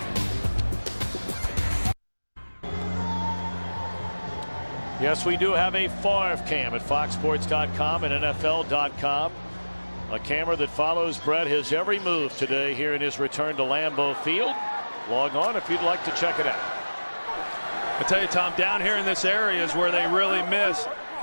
Yes, we do have a Favre cam at foxsports.com and NFL.com. A camera that follows Brett his every move today here in his return to Lambeau Field. Log on if you'd like to check it out. I tell you, Tom, down here in this area is where they really miss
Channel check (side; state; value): both; inverted; correlation -1.00